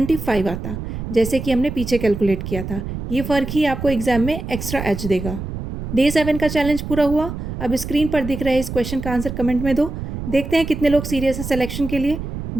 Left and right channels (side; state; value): right; noise; rumble, 7 dB below the sound